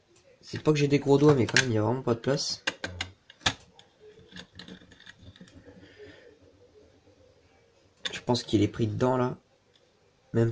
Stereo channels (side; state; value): both; identical; correlation 1.00